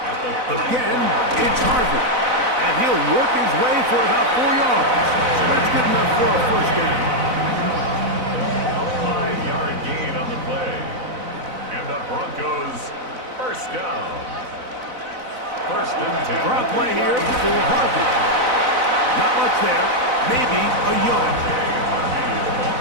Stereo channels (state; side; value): late; left; 4.0 ms